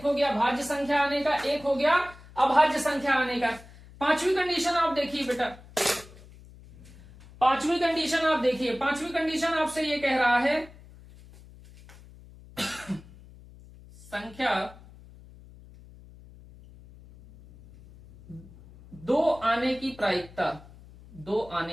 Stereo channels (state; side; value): noise; left; hum, 21 dB below the sound